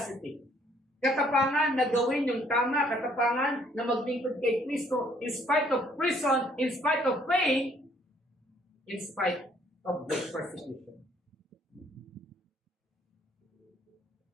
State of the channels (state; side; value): normal; both; correlation 0.64